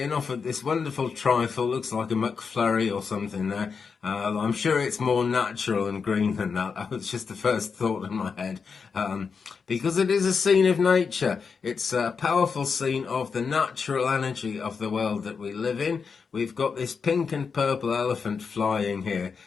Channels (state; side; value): quieter; right; 5.6 dB